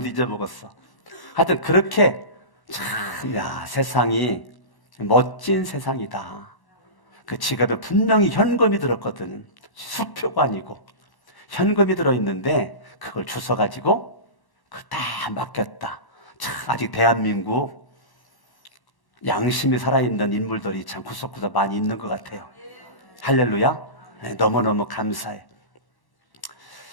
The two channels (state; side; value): late; right; 1.1 ms